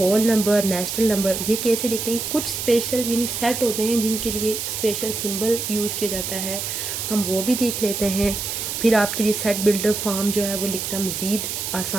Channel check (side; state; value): right; noise; hiss, 4 dB below the sound